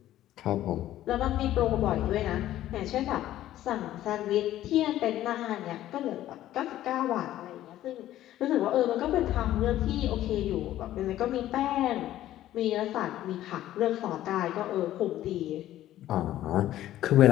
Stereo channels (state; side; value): quieter; right; 13.5 dB